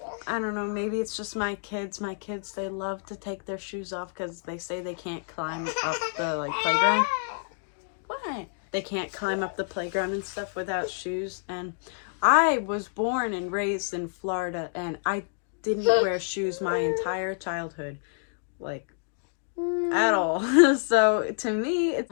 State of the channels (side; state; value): right; silent; digital silence